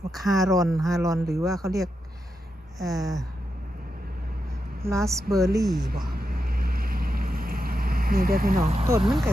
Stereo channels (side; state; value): both; normal; correlation 0.86